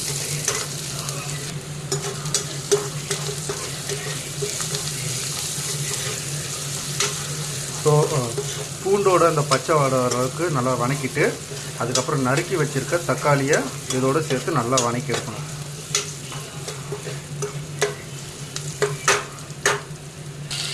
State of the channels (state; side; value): identical; both; correlation 1.00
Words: ஸோ பூண்டோட அந்த பச்சை வாடை வர அளவுக்கு நல்லா வதக்கிட்டு அதுக்கப்புறம் நறுக்கி வச்சுருக்க தக்காளியை இதோடு சேர்த்து நல்லா வதக்கி எடுக்கணும்.